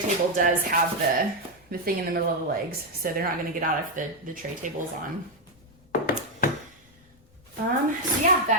does have the thing in the middle of the legs, so they're not going to get out if the tray table's on. So yeah,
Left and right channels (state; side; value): noise; left; rumble, 29 dB below the sound